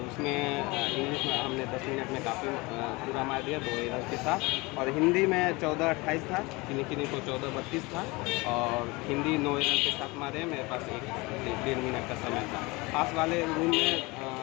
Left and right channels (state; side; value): quieter; right; 24.2 dB